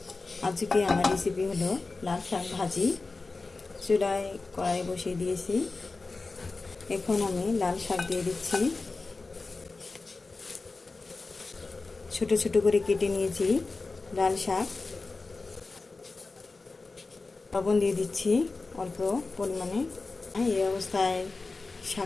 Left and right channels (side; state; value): right; quieter; 3.7 dB